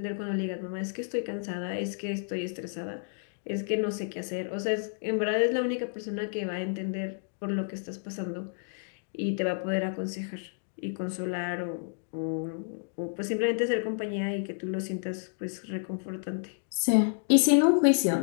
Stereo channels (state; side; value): silent; right; digital silence